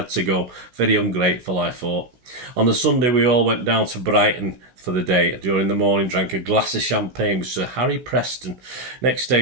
to go. Very ungrateful, I thought. On the Sunday, we all went down to Brighton for the day. During the morning, drank a glass of champagne with Sir Harry Preston. Next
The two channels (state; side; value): late; left; 16 ms